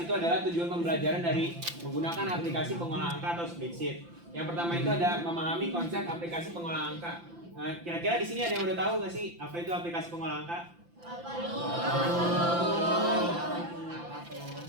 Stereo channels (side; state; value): left; late; 5.8 ms